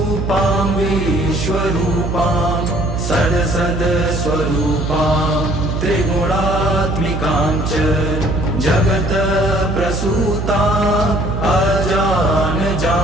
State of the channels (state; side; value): noise; right; hum, 3 dB below the sound